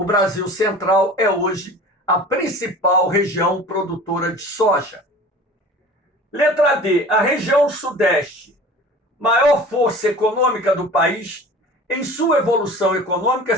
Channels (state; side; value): normal; both; correlation 0.41